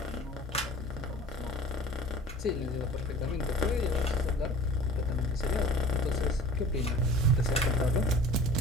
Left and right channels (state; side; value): normal; both; correlation 0.43